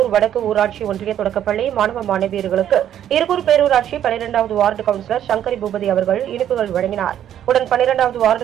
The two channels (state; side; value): quieter; left; 10.6 dB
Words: வடக்கு ஊராட்சி ஒன்றிய தொடக்கப்பள்ளி மாணவ மாணவியர்களுக்கு இருகூர் பேரூராட்சி 12வது வார்டு கவுன்சிலர் சங்கரி பூபதி அவர்கள் இனிப்புகள் வழங்கினார். உடன் 12வது